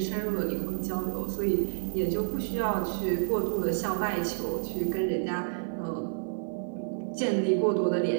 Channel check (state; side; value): silent; left; 58 dB below the other